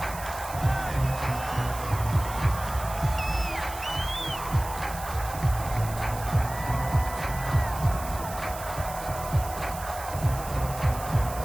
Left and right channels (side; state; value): right; noise; hiss, 13 dB below the sound